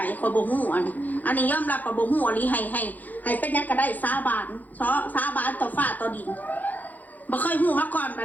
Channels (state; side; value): late; right; 0.082 ms